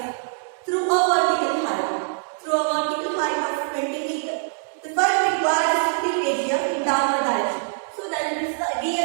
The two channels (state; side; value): silent; left; digital silence